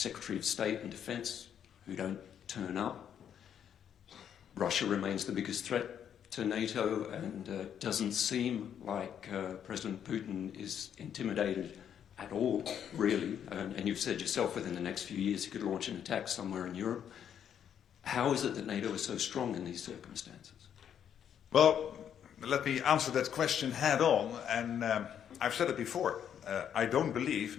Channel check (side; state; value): right; quieter; 9.0 dB